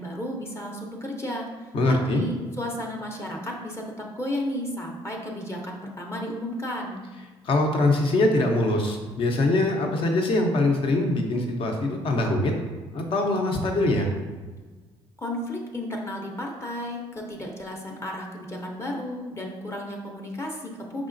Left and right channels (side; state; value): both; normal; correlation 0.65